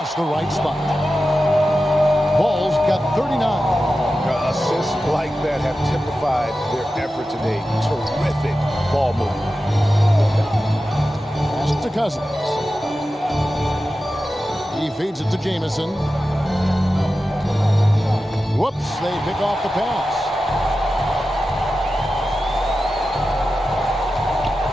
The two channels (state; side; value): normal; both; correlation 0.92